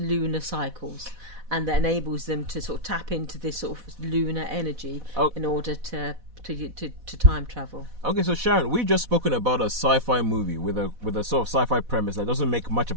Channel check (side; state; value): left; late; 4.1 ms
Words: cycles, and that enables them to sort of tap into this sort of lunar energy in order to time travel. Okay, so Sharon, we've just spoken about a sci-fi movie with a sort of sci-fi premise that doesn't make much